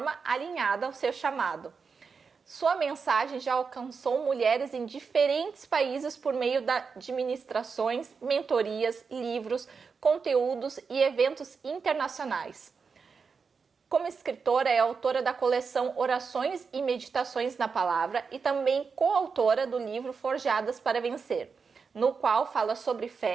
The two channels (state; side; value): quieter; left; 5.4 dB